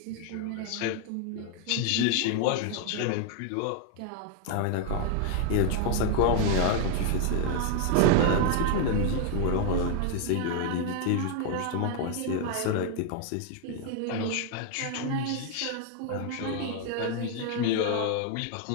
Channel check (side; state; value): both; different; correlation 0.00